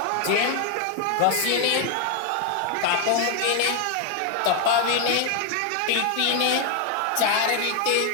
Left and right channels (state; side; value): different; both; correlation 0.00